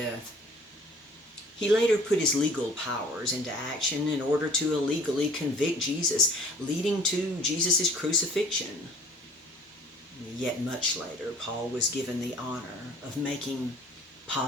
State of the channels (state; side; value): normal; both; correlation 0.51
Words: He later put his legal powers into action in order to illegally convict Jesus, leading to Jesus' crucifixion. Yet much later, Paul was given the honor of making